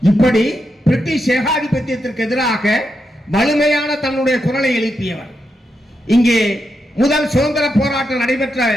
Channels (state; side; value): normal; both; correlation 0.85